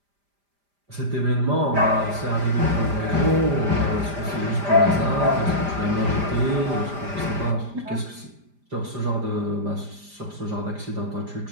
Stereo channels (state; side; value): late; left; 5.0 ms